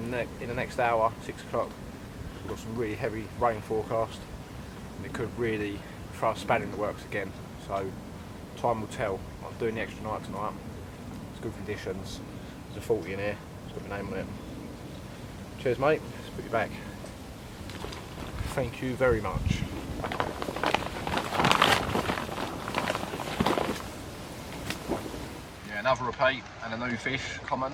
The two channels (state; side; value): identical; both; correlation 1.00